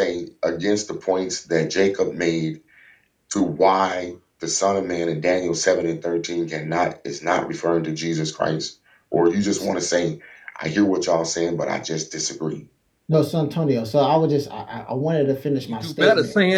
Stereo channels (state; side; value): identical; both; correlation 1.00